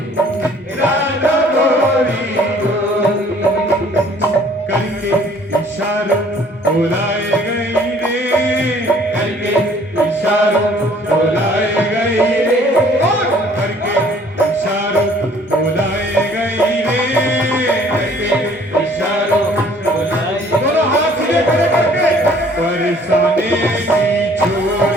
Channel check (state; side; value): normal; both; correlation 0.56